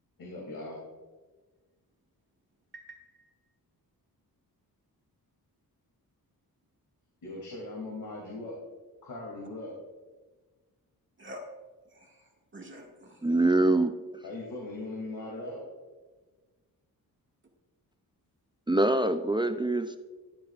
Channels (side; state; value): both; normal; correlation 0.72